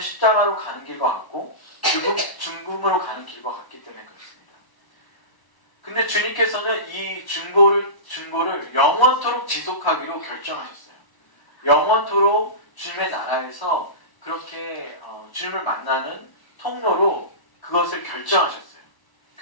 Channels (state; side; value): late; right; 1.1 ms